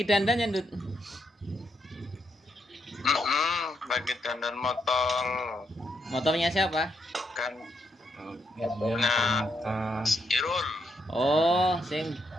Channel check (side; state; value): both; normal; correlation 0.77